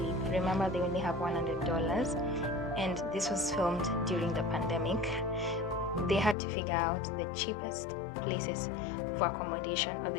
remember they only have $100, and this was filmed during the pandemic. They had to figure out the cheapest places for accommodation, or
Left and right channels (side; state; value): right; drops out; at 6.4 s